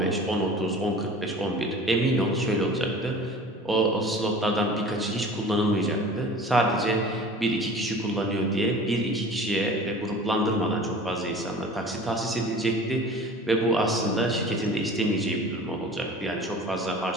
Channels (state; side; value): normal; both; correlation 0.41